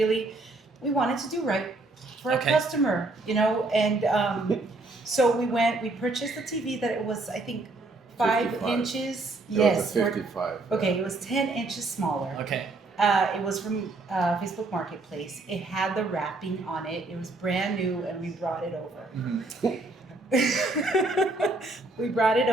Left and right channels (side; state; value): left; quieter; 3.1 dB